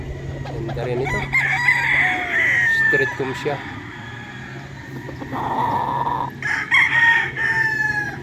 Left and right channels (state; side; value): identical; both; correlation 1.00